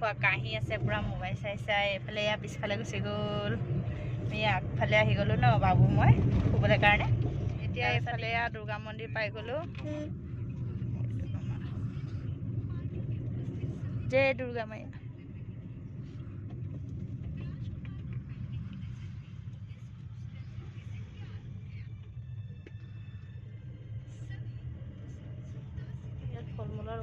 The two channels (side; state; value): both; identical; correlation 1.00